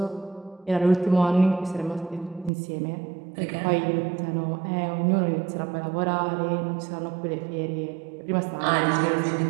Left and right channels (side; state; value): left; drops out; at 2.5 s